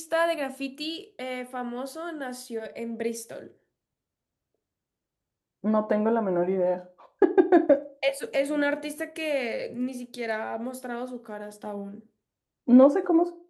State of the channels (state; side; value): identical; both; correlation 1.00